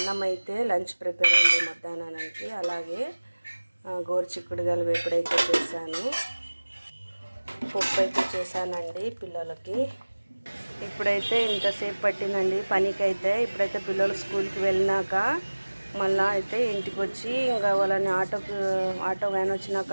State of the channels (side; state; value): both; inverted; correlation -1.00